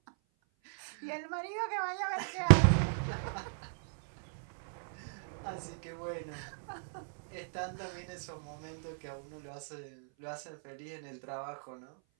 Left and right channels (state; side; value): silent; left; 53 dB below the other